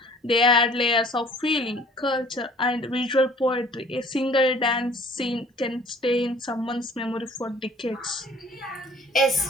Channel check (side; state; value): both; normal; correlation 0.53